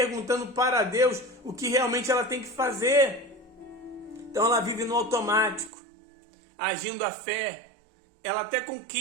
para Deus o que realmente ela tem que fazer. Então ela vive no automático, agindo a fé. Ela até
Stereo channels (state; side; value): drops out; left; at 5.7 s